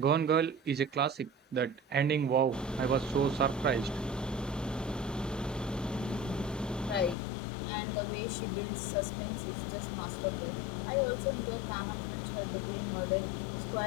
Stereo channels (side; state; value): right; drops out; at 7.2 s